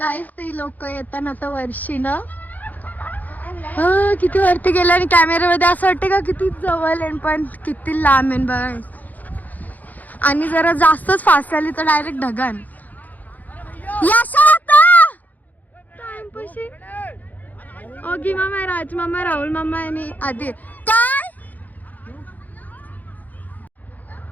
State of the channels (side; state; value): right; late; 0.081 ms